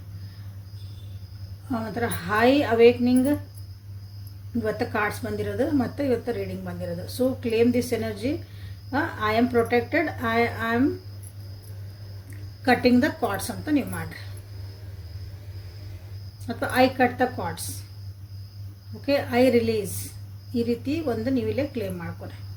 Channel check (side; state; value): both; identical; correlation 1.00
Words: ಒಂಥರ ಹೈ ಅವೇಕ್ನಿಂಗ್ ಇವತ್ತು ಕಾರ್ಡ್ಸ್ ಬಂದಿರೋದು ಮತ್ತು ಇವತ್ತು ರೀಡಿಂಗ್ ಬಂದಿರೋದು. So claim this energy. I am protected, I am cutting the cards ಅಂತ ನೀವು ಮಾಡಿರಿ, ಅಥವಾ I cut the cards. Okay, I release, ಈ ರೀತಿ ಒಂದು ನೀವಿಲ್ಲೇ ಕ್ಲೇಮ್ ಮಾಡ್ಕೊರಿ.